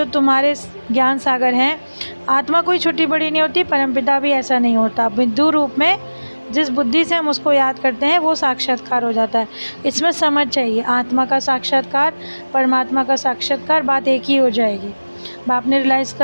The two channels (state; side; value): inverted; both; correlation -1.00